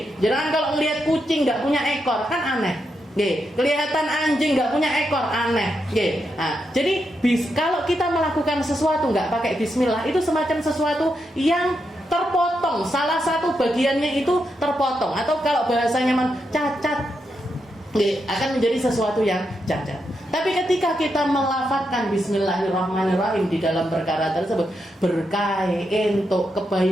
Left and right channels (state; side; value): normal; both; correlation 0.84